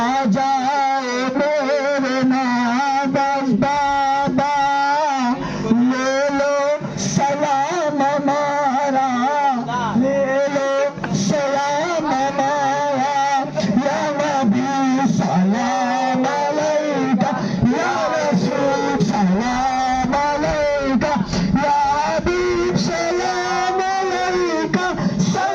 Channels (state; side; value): identical; both; correlation 1.00